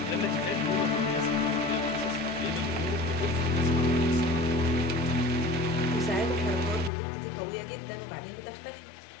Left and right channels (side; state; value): right; drops out; at 6.9 s